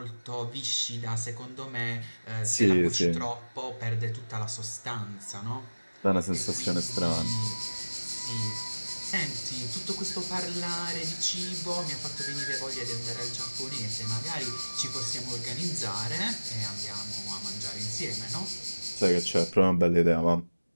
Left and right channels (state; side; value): inverted; both; correlation -1.00